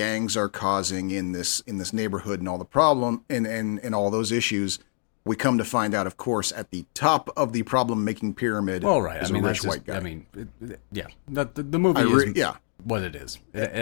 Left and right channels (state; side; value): silent; right; 61 dB below the other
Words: are causing in this neighborhood and all the problem and all those issues, we come to find out, of course, at the top of the problem-making pyramid is a rich white guy. I mean, the movie is what it is.